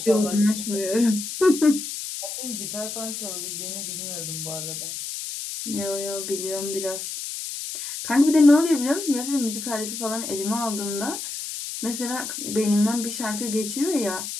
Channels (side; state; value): left; noise; hiss, 6 dB below the sound